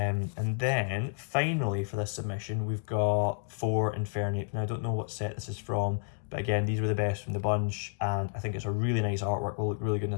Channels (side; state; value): right; silent; 57 dB below the other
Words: then finally for this submission, we've got 4 Infernape. Now I don't know what set this is from, but again, these were the best from the bunch, and I think it's a really nice artwork, will look really good in